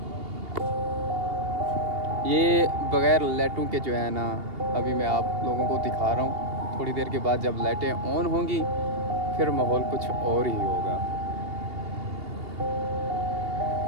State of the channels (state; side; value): late; left; 2.8 ms